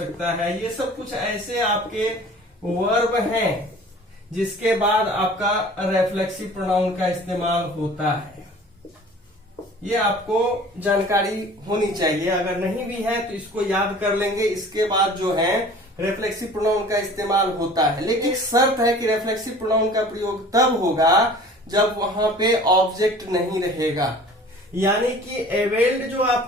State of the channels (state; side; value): normal; both; correlation 0.46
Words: है। ये सब कुछ ऐसे आपके वर्ब हैं जिसके बाद आपका रिफ्लेक्सिव प्रोनाउन का इस्तेमाल होता है। ये आपको जानकारी होनी चाहिए, अगर नहीं भी है तो इसको याद कर लेंगे। इसके बाद जो है रिफ्लेक्सिव प्रोनाउन का इस्तेमाल होता है, लेकिन एक शर्त है कि रिफ्लेक्सिव प्रोनाउन का प्रयोग तब होगा जब वहां पे ऑब्जेक्ट नहीं रहेगा। यानी कि अवेल्ड जो